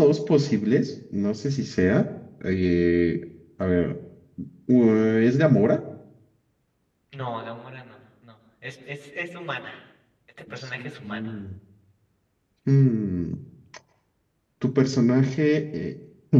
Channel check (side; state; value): both; identical; correlation 1.00